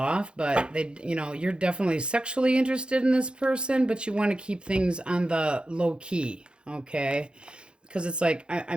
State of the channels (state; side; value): late; left; 0.053 ms